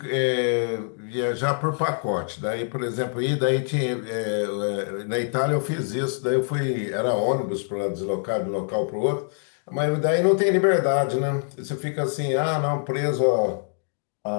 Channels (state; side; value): silent; right; digital silence